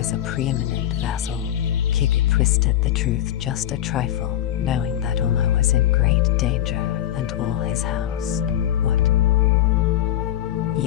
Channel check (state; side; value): quieter; right; 12.0 dB